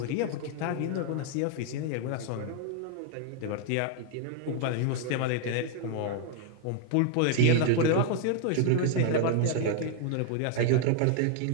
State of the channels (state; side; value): different; both; correlation 0.00